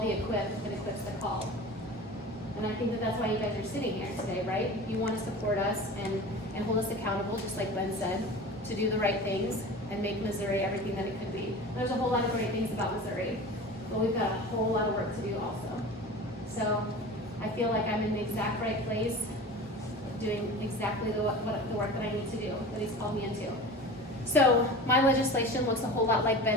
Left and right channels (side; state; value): both; normal; correlation 0.35